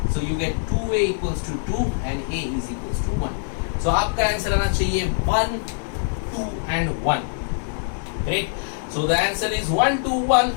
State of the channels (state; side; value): silent; right; digital silence